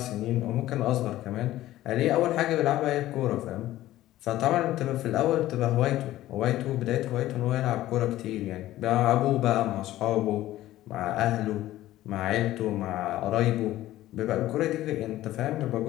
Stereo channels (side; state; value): right; quieter; 14.9 dB